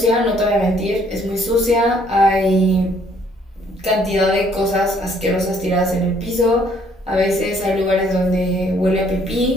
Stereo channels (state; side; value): normal; both; correlation 0.64